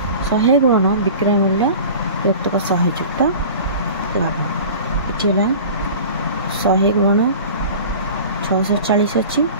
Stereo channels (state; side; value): inverted; both; correlation -0.39